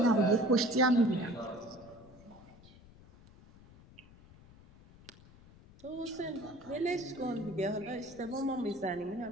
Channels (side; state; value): left; noise; rumble, 23 dB below the sound